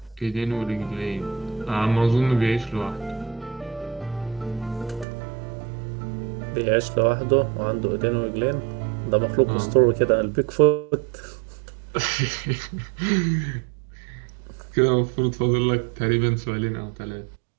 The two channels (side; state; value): left; drops out; at 5.1 s